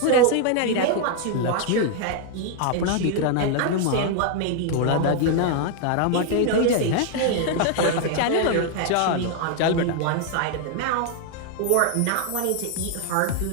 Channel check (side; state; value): both; different; correlation 0.00